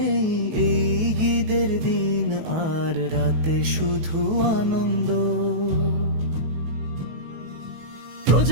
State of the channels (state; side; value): late; left; 19 ms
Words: এই ঈদের দিন আর রাতে শুধু আনন্দ।